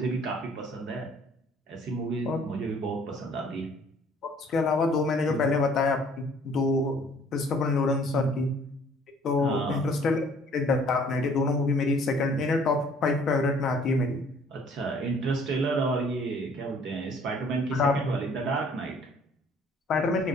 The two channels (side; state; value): both; normal; correlation 0.57